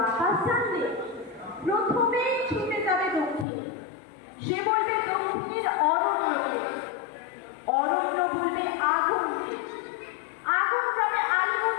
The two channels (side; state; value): right; drops out; at 3.5 s